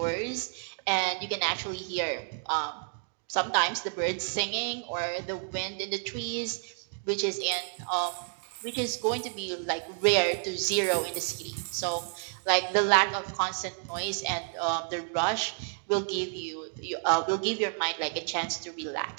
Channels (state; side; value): silent; left; 58 dB below the other